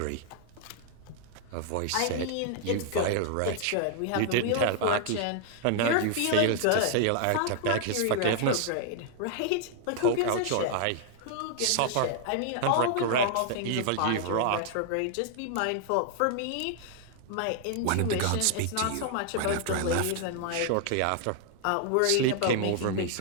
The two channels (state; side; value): different; both; correlation 0.00